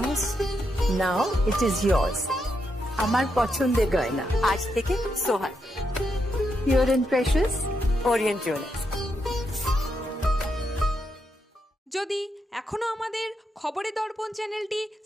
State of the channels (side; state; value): both; normal; correlation 0.82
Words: Now it is yours. আমার পছন্দের গয়না আজ থেকে সোহান, Pure and Precious Orient Jewelers। যদি এখনও আমাদের খবরের দর্পণ চ্যানেলটি